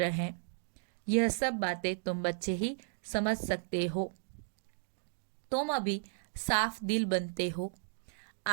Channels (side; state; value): left; silent; digital silence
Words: हैं। यह सब बातें तुम बच्चे ही समझ सकते हो। तुम अभी साफ दिल बनते हो,